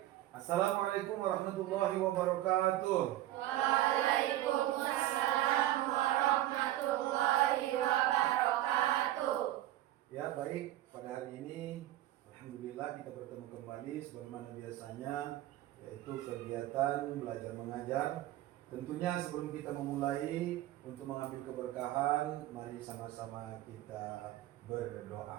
Assalamualaikum warahmatullahi wabarakatuh. Waalaikumsalam warahmatullahi wabarakatuh. Ya, baik. Pada hari ini alhamdulillah kita bertemu kembali sebagaimana biasanya, yaitu kegiatan belajar mengajar. Tentunya sebelum kita memulai untuk mengambil keberkahan, mari sama-sama kita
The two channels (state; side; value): quieter; left; 14.6 dB